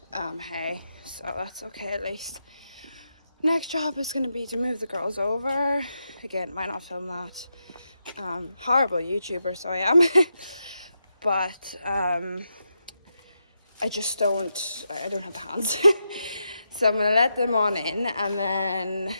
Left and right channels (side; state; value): both; inverted; correlation -0.85